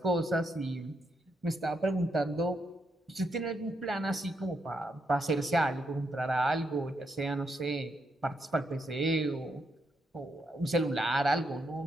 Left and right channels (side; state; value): both; normal; correlation 0.80